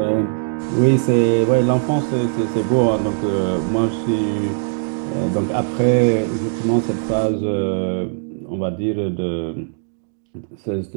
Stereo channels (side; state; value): left; silent; digital silence